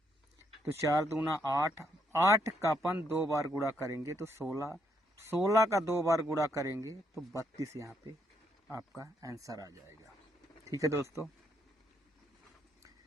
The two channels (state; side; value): normal; both; correlation 0.75